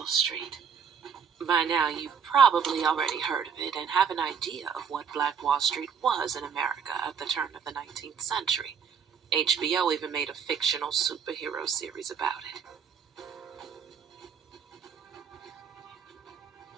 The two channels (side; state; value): left; quieter; 7.0 dB